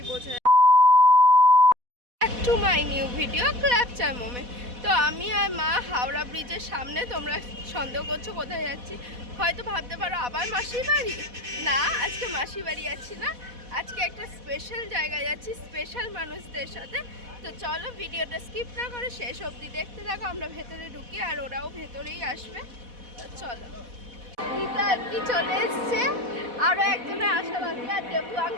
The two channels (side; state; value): left; late; 4.1 ms